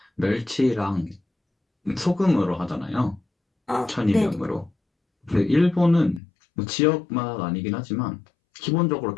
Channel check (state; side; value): drops out; right; at 6.2 s